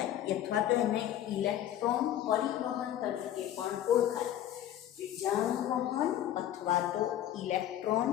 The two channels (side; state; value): right; quieter; 11.8 dB